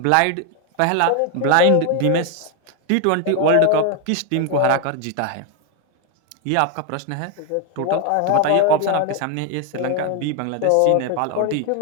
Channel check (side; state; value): both; different; correlation 0.01